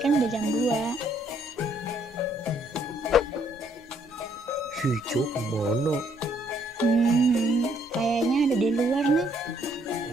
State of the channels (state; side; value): normal; both; correlation 0.68